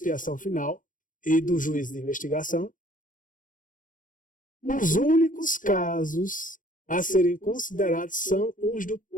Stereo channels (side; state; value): right; late; 0.38 ms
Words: final e do juízo de investigação, os únicos casos a serem considerados são os do